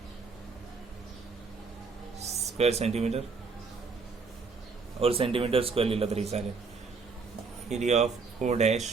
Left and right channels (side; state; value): left; quieter; 4.7 dB